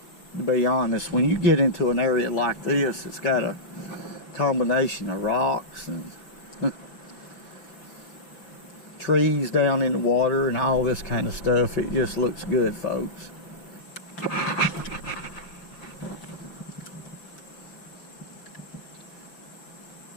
to be honest. When you get into an area like this, it's got a combination of rocks and trees down in the water and all this kind of stuff. It just looks good, folks.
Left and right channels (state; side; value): late; right; 5.4 ms